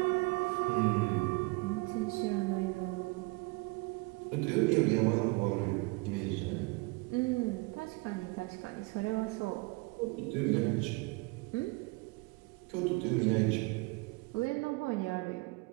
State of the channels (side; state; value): left; quieter; 26.5 dB